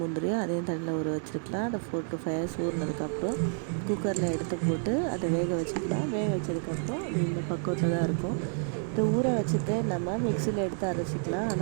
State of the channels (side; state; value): left; silent; 58 dB below the other